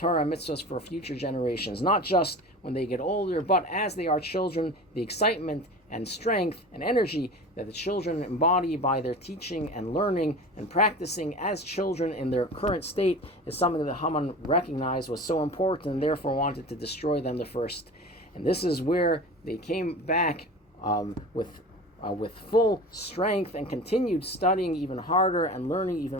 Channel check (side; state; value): both; normal; correlation 0.35